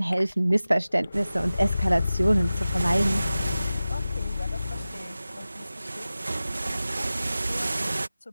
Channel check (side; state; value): both; inverted; correlation -0.96